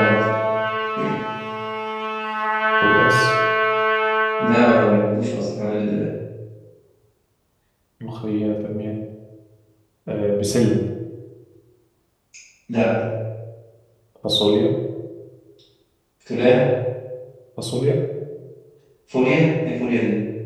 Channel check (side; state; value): both; identical; correlation 1.00